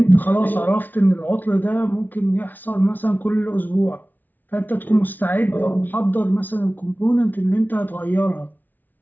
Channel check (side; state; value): right; late; 0.084 ms